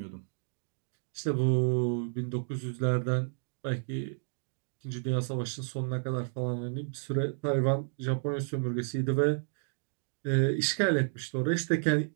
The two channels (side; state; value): left; silent; digital silence